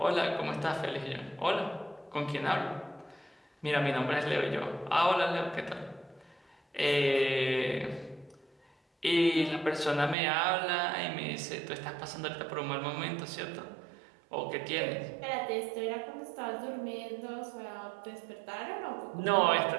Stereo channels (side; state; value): left; drops out; at 10.2 s